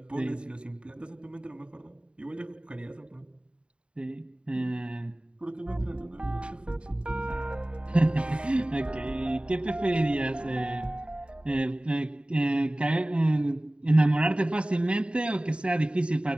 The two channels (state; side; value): late; left; 0.055 ms